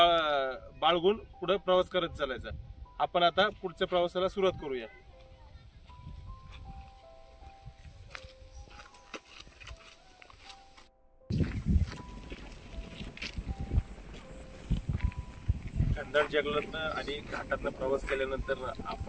पुढे प्रवास करत चालायचा. आपण आता पुढच्या प्रवासाला सुरुवात करूया. घनदाट जंगलातनं आणि घाटातनं प्रवास केल्यानंतर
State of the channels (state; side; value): identical; both; correlation 1.00